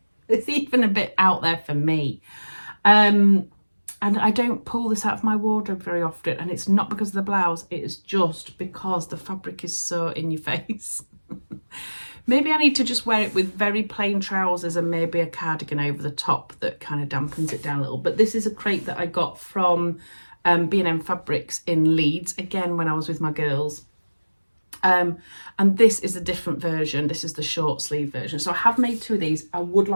It's even a bit out there for me. And I don't pull this out of my wardrobe very often, and it's not because of the blouse, it is just because the fabric is so in your face. Maybe I need to just wear it with very plain trousers and maybe a cardigan over the top that kind of dampens it down a little. But this is a crepe that I got from B&M Fabrics in Leeds, again when I was with my girls. And this is a different version. This is the short sleeve version. So I have made 2 of these. I would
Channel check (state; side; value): inverted; both; correlation -1.00